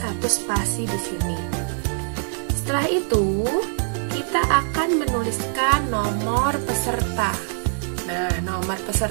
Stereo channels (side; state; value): left; silent; 63 dB below the other